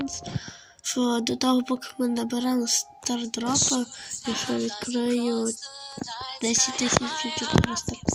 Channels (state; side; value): identical; both; correlation 1.00